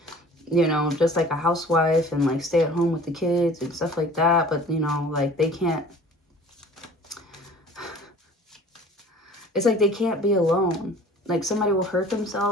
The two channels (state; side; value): normal; both; correlation 0.47